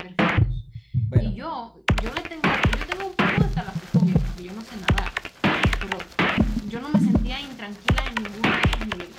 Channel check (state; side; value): identical; both; correlation 1.00